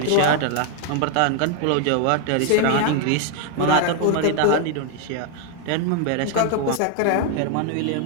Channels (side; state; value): both; different; correlation 0.00